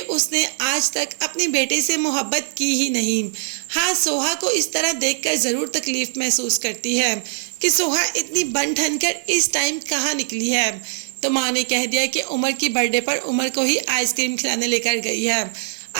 आज तक अपने बेटे से मोहब्बत की ही नहीं। हाँ, सोहा को इस तरह देखकर ज़रूर तकलीफ़ महसूस करती है कि सोहा इतनी बन ठन कर इस टाइम कहाँ निकली है। तो माँ ने कह दिया कि उमर की बर्थडे पर उमर को ही आइसक्रीम खिलाने लेकर गई है।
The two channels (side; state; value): left; silent; 56 dB below the other